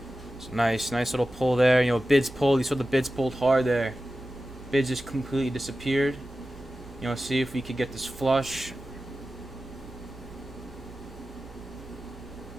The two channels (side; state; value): both; normal; correlation 0.94